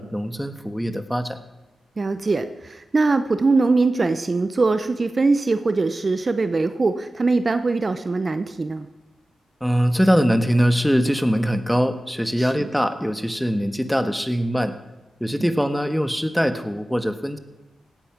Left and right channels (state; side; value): normal; both; correlation 0.96